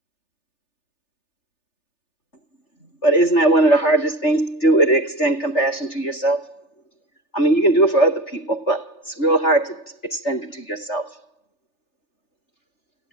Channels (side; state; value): right; late; 3.4 ms